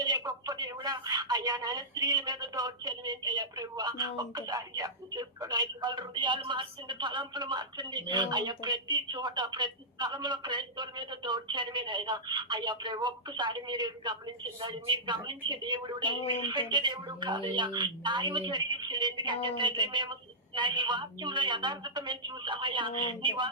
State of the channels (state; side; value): normal; both; correlation -0.12